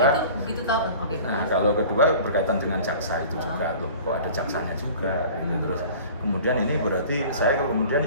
itu begitu tahu. Oke. Nah kalau kedua berkaitan dengan jaksa itu juga loh, kok ada jaksanya juga gitu. Terus kemudian ini berarti saya kemudian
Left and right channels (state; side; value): inverted; both; correlation -0.43